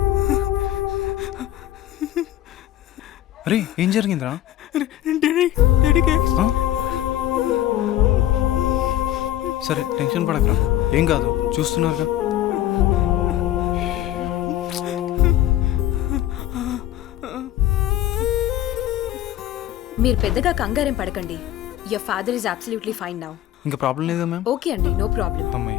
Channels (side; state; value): right; quieter; 13.1 dB